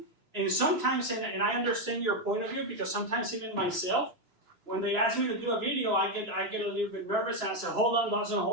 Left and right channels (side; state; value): left; late; 3.0 ms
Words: And sometimes, and I understand your point of view, because sometimes even myself, when they ask me to do a video, I get a little bit nervous and I say, hold on, Dawson,